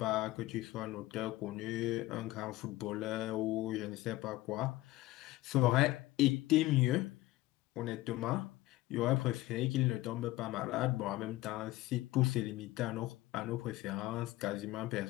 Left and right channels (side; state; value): right; quieter; 17.8 dB